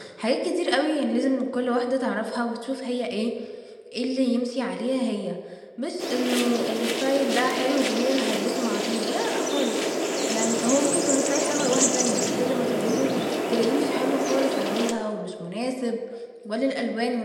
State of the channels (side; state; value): both; identical; correlation 1.00